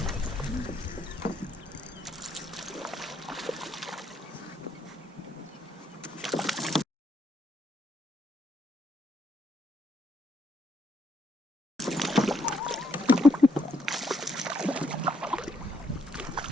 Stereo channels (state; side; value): normal; both; correlation 0.74